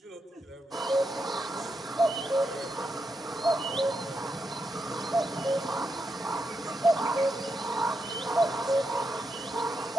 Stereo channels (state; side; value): normal; both; correlation 0.84